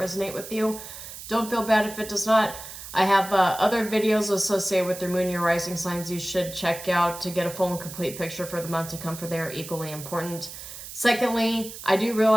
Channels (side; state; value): right; noise; hiss, 12 dB below the sound